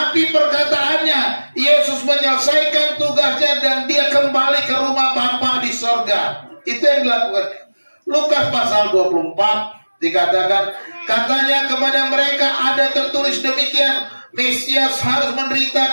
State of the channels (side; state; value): both; inverted; correlation -1.00